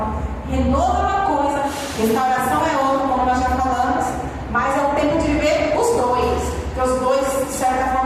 Renovo é uma coisa, restauração é outra, como nós já falamos, mas é o tempo de viver os dois, porque os dois, de certa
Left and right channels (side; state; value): both; identical; correlation 1.00